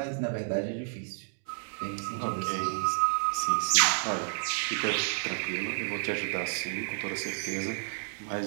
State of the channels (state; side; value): silent; left; 57 dB below the other